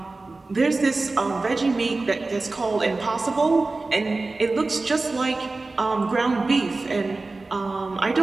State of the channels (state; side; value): quieter; left; 3.4 dB